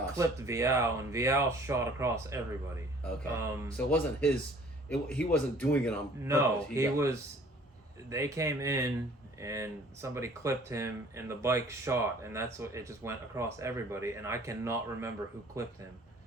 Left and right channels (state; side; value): normal; both; correlation 0.54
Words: clipped Vial, and Vial shot across everybody. Okay. So it wasn't he wasn't doing it on purpose. No, they came in, and somebody clipped him, and the bike shot, and that's what it just went across everybody, and I cannot remember who clipped him.